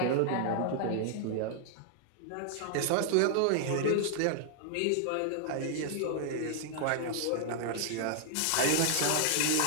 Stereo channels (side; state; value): both; different; correlation -0.01